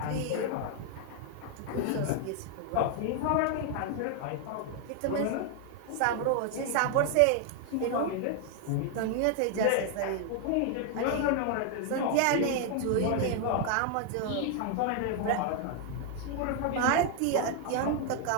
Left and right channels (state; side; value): different; both; correlation 0.00